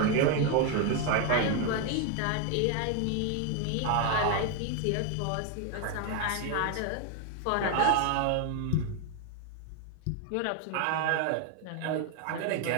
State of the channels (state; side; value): different; both; correlation 0.01